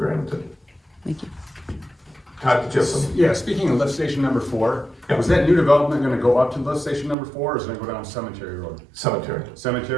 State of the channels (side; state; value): left; drops out; at 7.2 s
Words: Thank you. Todd, did you have some? Yeah, speaking of lift station number 4, Yeah. was that new development gonna go up to lift station number 4, or is it gonna go down Cemetery Road? Cemetery.